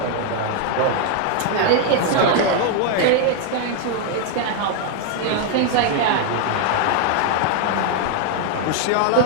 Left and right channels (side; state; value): both; different; correlation 0.00